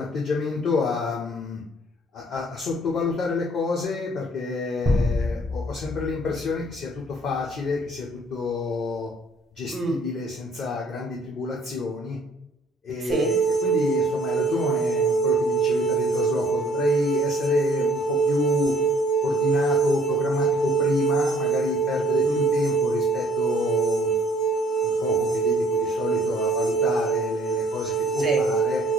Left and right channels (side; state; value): both; normal; correlation 0.59